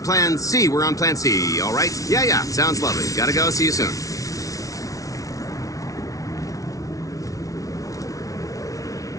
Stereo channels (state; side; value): late; right; 0.17 ms